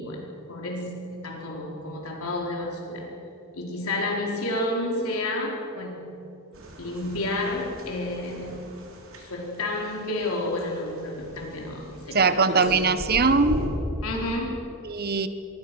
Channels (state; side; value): normal; both; correlation 0.06